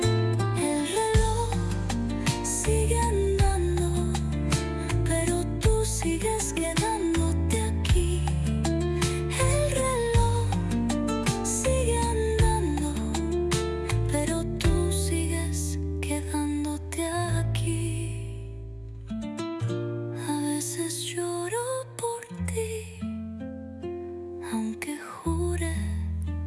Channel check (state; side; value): identical; both; correlation 1.00